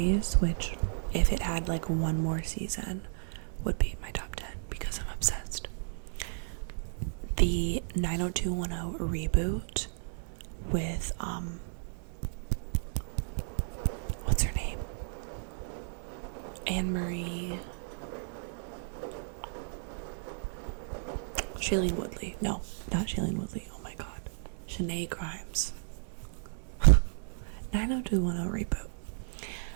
which if it had like one more season would be my top 10 because I'm obsessed, the 90210 reboot with what's her name? Anne-Marie. Shailene Woodley. No, not Shailene Woodley. Oh my god. Shanae Grimes. 90210 reboot.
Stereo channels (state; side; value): silent; left; 55 dB below the other